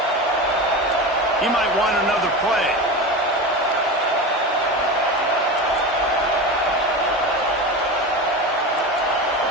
He might want another play.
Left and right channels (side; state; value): both; normal; correlation 0.25